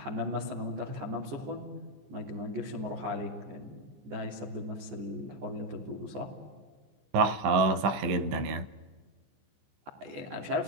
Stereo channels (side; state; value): left; late; 15 ms